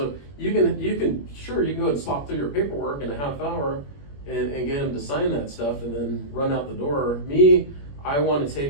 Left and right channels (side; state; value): right; late; 21 ms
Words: you can sure you can go ahead and slop through your paperwork in a half hour and get them to sign that stuff and then run out the door. Me, I want to